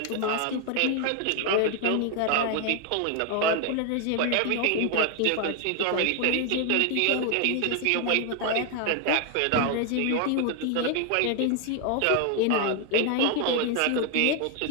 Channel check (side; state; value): both; different; correlation 0.01